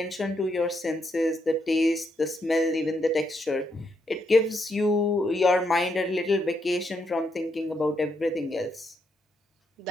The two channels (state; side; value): normal; both; correlation 0.78